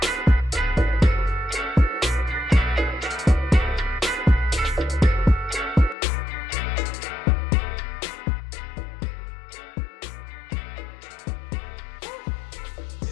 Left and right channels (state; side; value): drops out; right; at 6.0 s